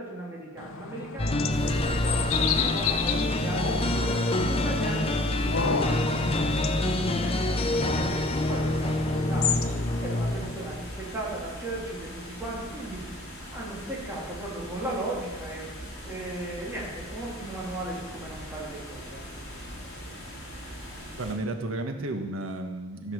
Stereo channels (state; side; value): normal; both; correlation 0.51